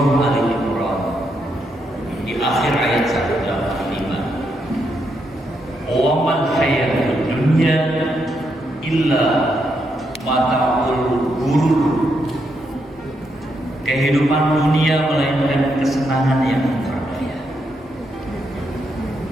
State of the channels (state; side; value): normal; both; correlation 0.80